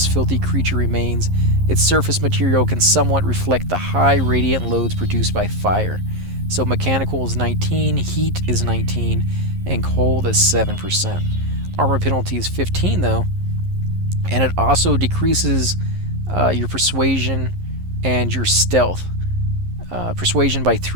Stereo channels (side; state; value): left; late; 11 ms